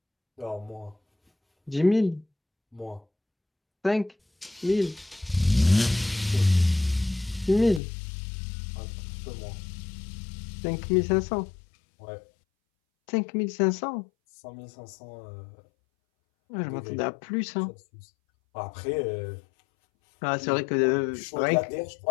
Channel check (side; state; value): right; drops out; at 7.8 s